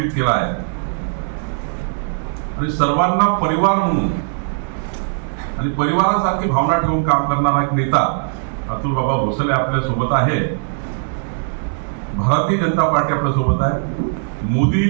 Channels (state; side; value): silent; left; digital silence